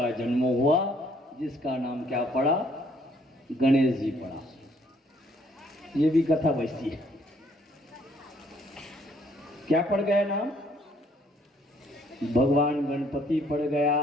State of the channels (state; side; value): normal; both; correlation 0.65